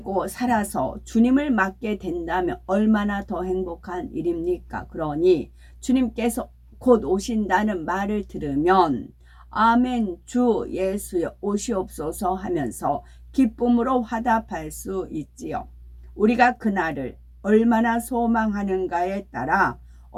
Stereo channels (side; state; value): both; identical; correlation 1.00